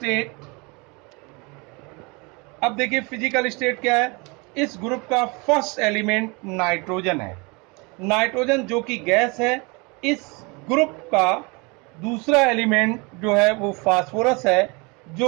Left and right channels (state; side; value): quieter; left; 28.5 dB